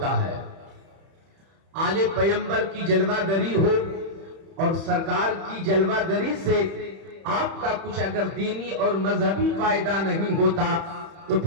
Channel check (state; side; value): late; left; 31 ms